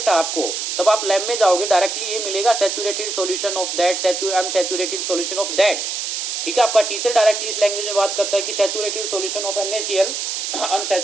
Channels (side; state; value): right; noise; hiss, 3 dB below the sound